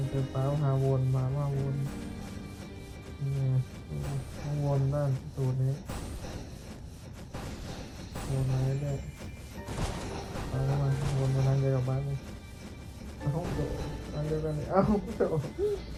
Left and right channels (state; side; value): identical; both; correlation 1.00